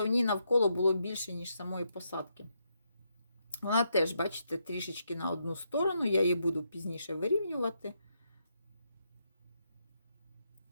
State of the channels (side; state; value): both; inverted; correlation -0.79